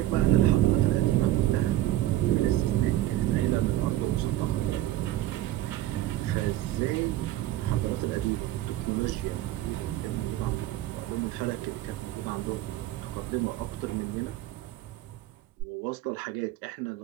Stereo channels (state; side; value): quieter; left; 14.5 dB